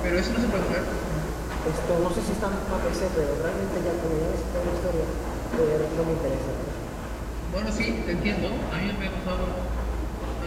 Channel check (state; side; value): identical; both; correlation 1.00